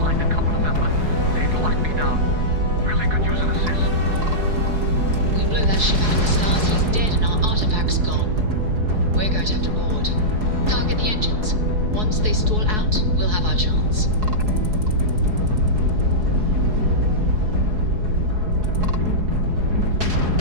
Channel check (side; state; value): left; late; 4.7 ms